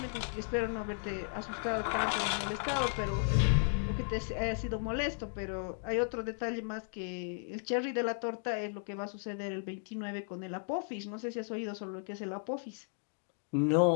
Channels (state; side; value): silent; right; 54 dB below the other